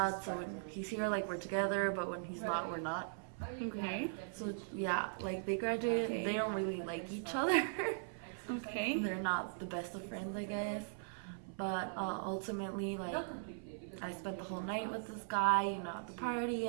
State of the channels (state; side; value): silent; left; 51 dB below the other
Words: so when he's here, we're together, but when he's not, we're not. Okay. So, yeah, they graduated, Okay. they don't really like each other. Okay. They're not the best of friends, I guess. But ultimately, I spent the whole night with this guy, at the party,